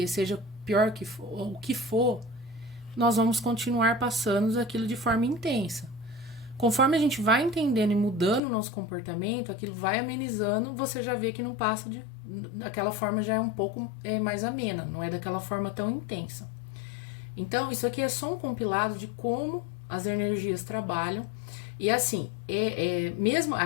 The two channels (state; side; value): drops out; right; at 8.4 s